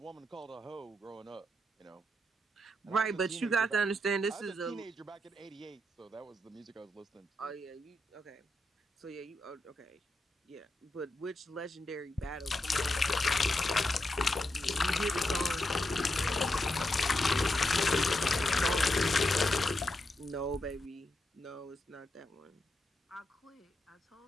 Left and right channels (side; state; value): both; normal; correlation 0.84